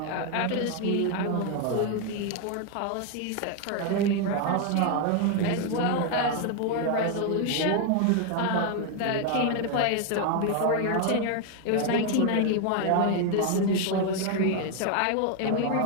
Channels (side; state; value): both; different; correlation 0.01